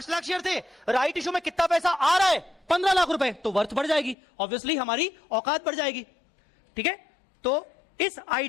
लाख शेयर थे। राइट इशू में कितना पैसा आ रहा है? 15 लाख रुपए। तो वर्थ बढ़ जाएगी, ऑब्वियसली हमारी औकात बढ़ जाएगी। ठीक है? तो इस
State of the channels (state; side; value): drops out; right; at 4.2 s